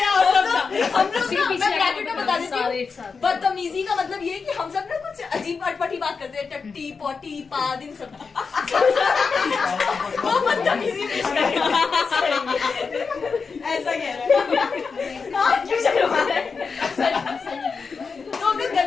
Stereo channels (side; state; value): right; quieter; 5.1 dB